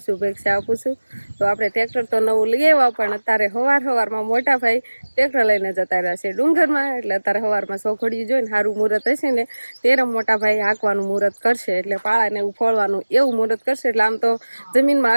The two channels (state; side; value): inverted; both; correlation -1.00